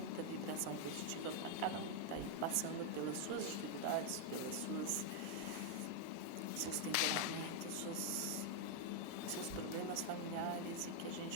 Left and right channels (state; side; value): different; both; correlation 0.00